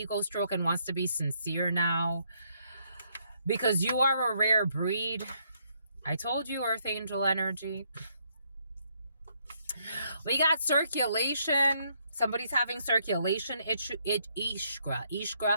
stroke and wants to be sincere now. Because you are a rare breed. I told you, Earth Angel energy. We got circulation. Somebody's having circulation ishkra.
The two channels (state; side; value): inverted; both; correlation -0.72